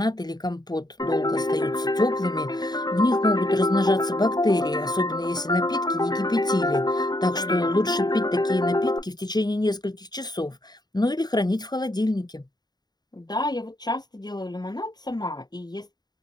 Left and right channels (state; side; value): late; right; 0.20 ms